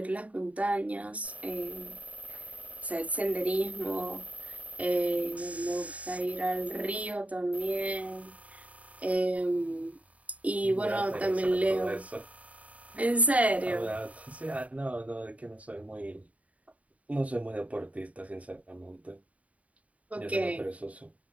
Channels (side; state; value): left; late; 0.068 ms